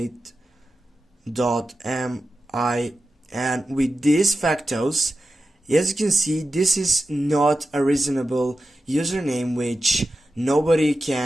and with these factors, as you can see, this is not a reasonable username which nobody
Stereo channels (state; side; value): normal; both; correlation 0.92